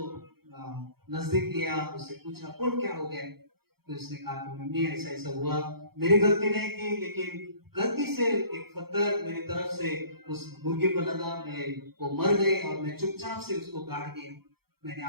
नजदीक लिया, उससे पूछा, बोल क्या हो गया? तो उसने कहा कि मम्मी ऐसा ऐसा हुआ, मेरी गलती नहीं थी, लेकिन गलती से एक पत्थर मेरी तरफ से उस मुर्गे पर लगा, मैं वो मर गई और मैं चुपचाप से उसको गाड़ दिया। मैंने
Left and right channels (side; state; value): left; late; 0.95 ms